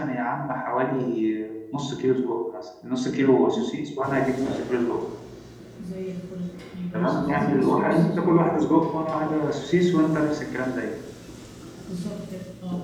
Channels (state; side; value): identical; both; correlation 1.00